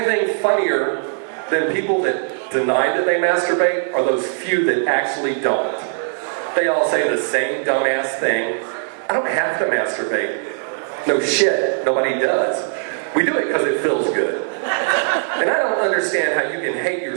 funnier than people that deny that they masturbate are those few that actually don't. They all say the same dumbass thing. I don't have to masturbate. No shit, nobody does. We do it because it feels good. And I don't understand how you can hate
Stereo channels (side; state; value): left; silent; 59 dB below the other